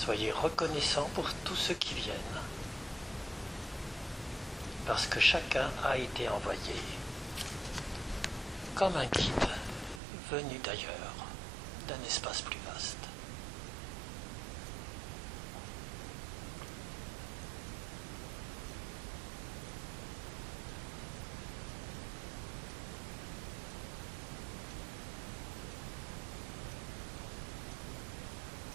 reconnaissants pour tous ceux qui viennent, parce que chacun a été envoyé comme un guide venu d'ailleurs, d'un espace plus vaste.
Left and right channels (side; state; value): left; drops out; at 10.0 s